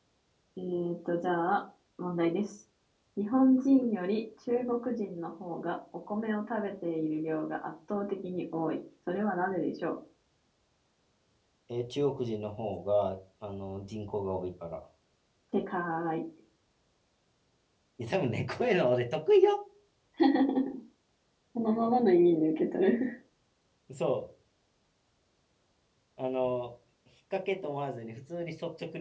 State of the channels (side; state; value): both; identical; correlation 1.00